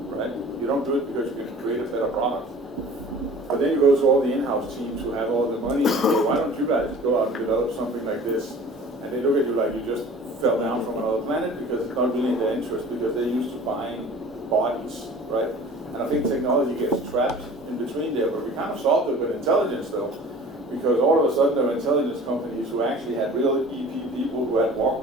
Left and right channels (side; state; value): both; normal; correlation 0.44